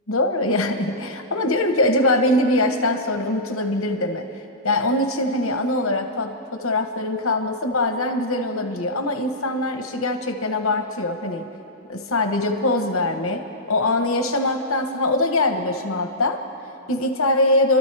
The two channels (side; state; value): both; normal; correlation -0.15